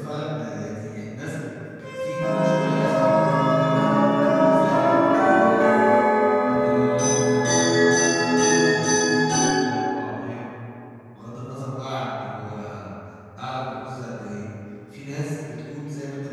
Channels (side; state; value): both; identical; correlation 1.00